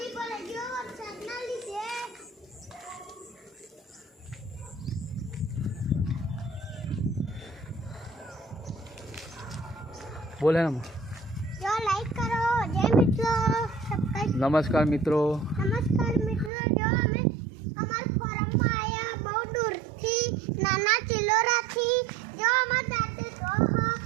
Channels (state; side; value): drops out; left; at 16.5 s